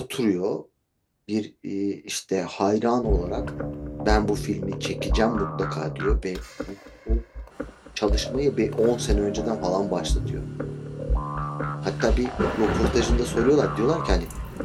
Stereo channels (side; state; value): both; identical; correlation 1.00